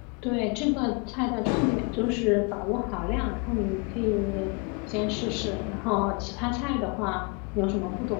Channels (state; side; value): quieter; right; 32.6 dB